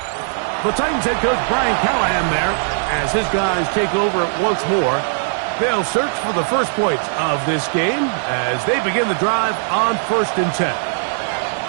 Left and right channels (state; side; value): silent; left; digital silence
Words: The Titans head coach Brian Callahan there as his guys take over once more. They'll search for the first points of this game as they begin the drive on 1st and 10.